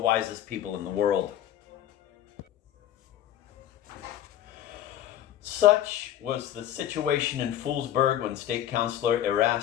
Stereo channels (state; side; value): quieter; right; 11.7 dB